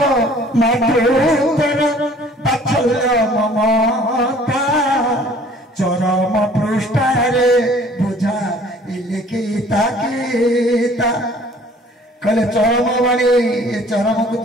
मातृतर बात्सल्य ममता चरम पृष्ठारे बुझा इलिखिता गीता कहले चरम बाणी ये चरम को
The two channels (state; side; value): normal; both; correlation 0.53